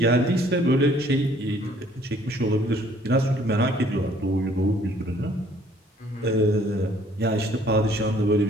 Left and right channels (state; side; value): normal; both; correlation 0.60